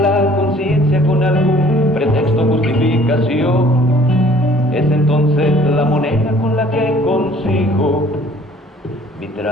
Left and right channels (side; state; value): both; normal; correlation 0.55